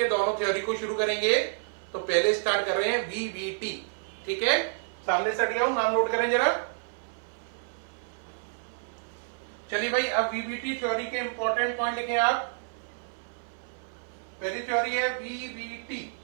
दोनों थ्योरी को शुरू करेंगे। तो पहले स्टार्ट कर रहे हैं VBT, ठीक है। सामने से हट गया हूं, नाम नोट करें जरा। चलिए भाई, अब VBT थ्योरी के इंपॉर्टेंट पॉइंट लिखें आप। पहली थ्योरी है VBT,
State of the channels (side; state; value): left; silent; 58 dB below the other